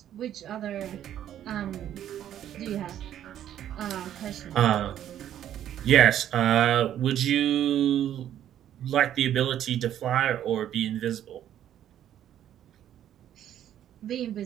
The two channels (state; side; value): quieter; left; 11.0 dB